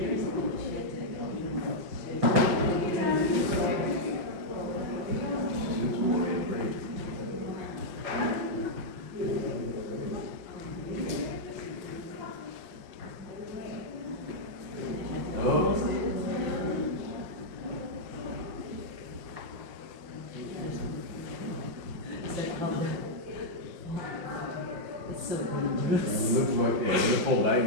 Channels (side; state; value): left; late; 5.5 ms